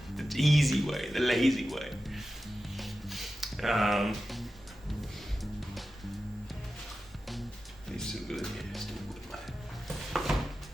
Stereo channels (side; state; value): both; normal; correlation 0.93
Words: The easy way, the lazy way. It's too good, yeah, it's too good, man.